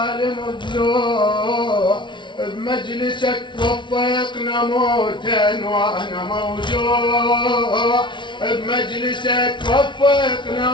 ضلوع، بمجلسك وفقنا موتا وانا موجوع، بمجلسك وفقنا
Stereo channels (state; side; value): late; right; 0.23 ms